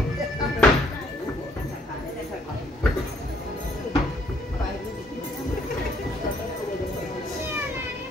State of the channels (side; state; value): both; normal; correlation 0.65